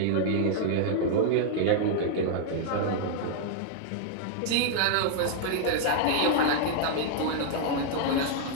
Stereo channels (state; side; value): different; both; correlation -0.01